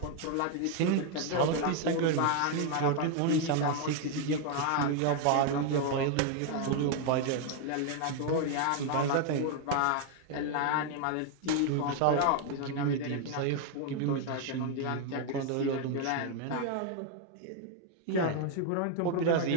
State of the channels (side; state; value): both; different; correlation 0.01